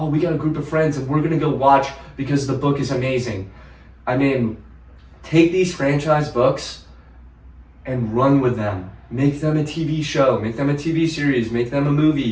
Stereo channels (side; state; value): both; identical; correlation 1.00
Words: we got a group of friends, and we're gonna go watch because the book is amazing." I mean, take these franchise books and run with them. Make them a TV show. Make them a TV series. Make them a